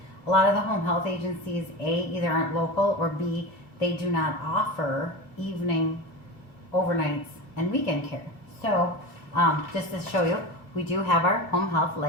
a lot of the home health agencies, A, either aren't local, or B, they do not offer evening, overnights, and weekend care. So just to show you, we do have our home health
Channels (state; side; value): late; right; 2.4 ms